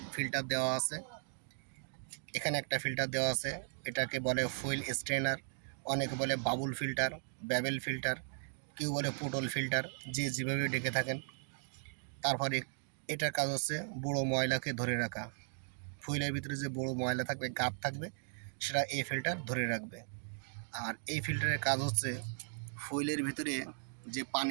ফিল্টার দেওয়া আছে, এখানে একটা ফিল্টার দেওয়া আছে, এটাকে বলে ফুয়েল স্ট্রেনার, অনেকে বলে বাবুল ফিল্টার, ব্যাবেল ফিল্টার, কেউ বলে পুটল ফিল্টার, যে যেভাবে ডেকে থাকেন। তারপরে এটার কাজ হচ্ছে বড়ো ময়লাকে ধরে রাখা, ফুয়েলের ভিতরে যে বড়ো ময়লা থাকবে, গাদ থাকবে, সেটা এই ফিল্টার ধরে রাখবে। আর এই ফিল্টারের কাজ হচ্ছে ফুয়েলের ভিতরে যে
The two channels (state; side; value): silent; left; digital silence